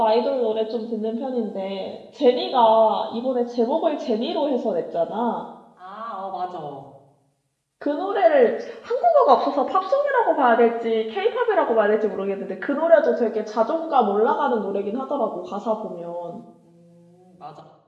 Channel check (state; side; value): identical; both; correlation 1.00